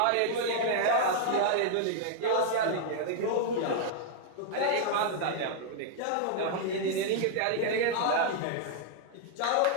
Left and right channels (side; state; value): both; different; correlation -0.01